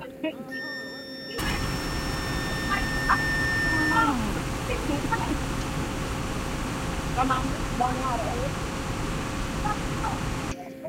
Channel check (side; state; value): both; identical; correlation 1.00